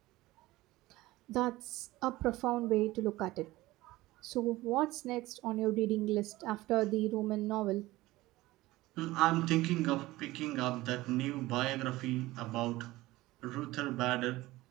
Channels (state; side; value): quieter; left; 18.4 dB